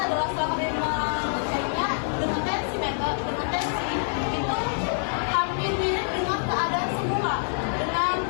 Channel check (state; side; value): silent; right; digital silence